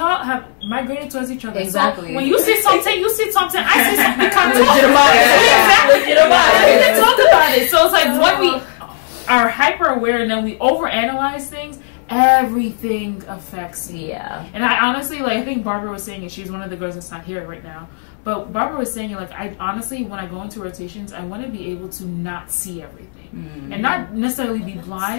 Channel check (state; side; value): silent; right; digital silence